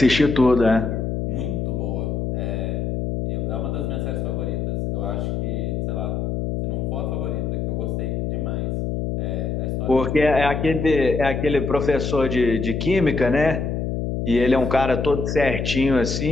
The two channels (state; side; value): noise; left; hum, 1 dB below the sound